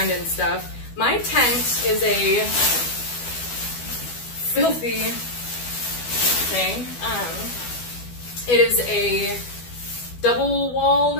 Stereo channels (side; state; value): right; late; 12 ms